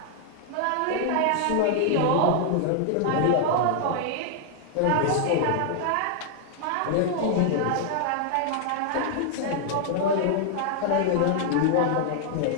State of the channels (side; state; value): both; different; correlation 0.00